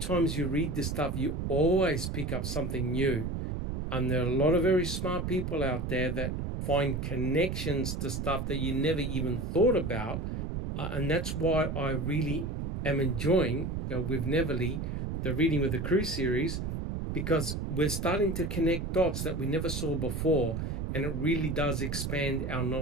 you read this stuff, you always pick up something new. And there are a lot of very smart people out there that find connections to stuff that you never even thought about. And that's why I really am enjoying, with Neverly, the Reading with the Crew series, because we're starting to connect dots that we never saw before. And it really does expand our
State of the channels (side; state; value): right; noise; rumble, 3 dB below the sound